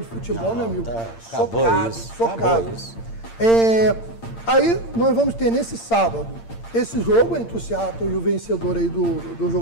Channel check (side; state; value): right; late; 8.8 ms